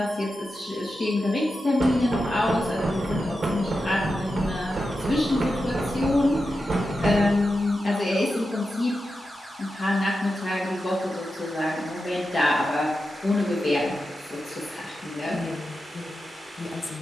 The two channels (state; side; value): normal; both; correlation 0.90